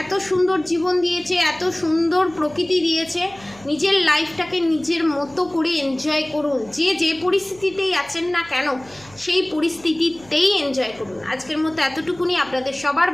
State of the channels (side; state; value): right; noise; hum, 24 dB below the sound